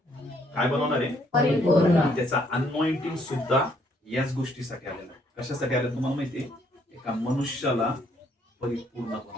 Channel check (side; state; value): both; normal; correlation 0.68